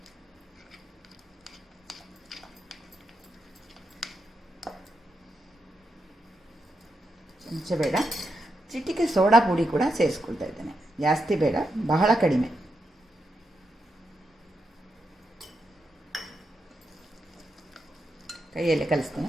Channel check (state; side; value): normal; both; correlation 0.84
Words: ಚಮಚ ಬೇಡ, ಚಿಟಿಕೆ ಸೋಡಾ ಪುಡಿ ಕೂಡ ಸೇರಿಸ್ಕೊಳ್ತಾ ಇದ್ದೇನೆ. ಜಾಸ್ತಿ ಬೇಡ, ಬಹಳ ಕಡಿಮೆ. ಕೈಯಲ್ಲಿ ಕಲಿಸ್ತೇನೆ.